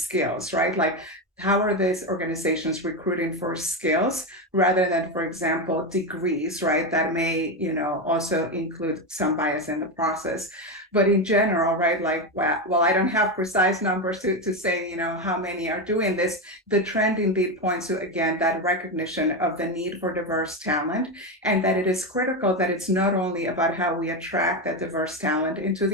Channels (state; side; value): normal; both; correlation 0.13